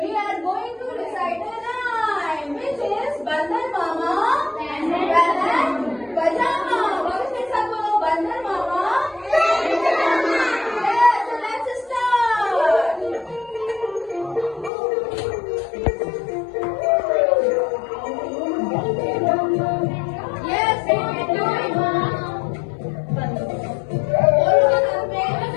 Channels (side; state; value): right; drops out; at 14.7 s